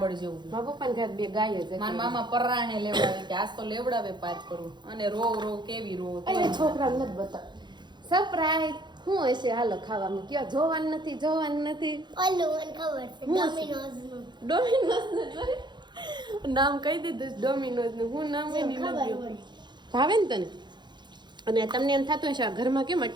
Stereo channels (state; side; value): late; left; 0.21 ms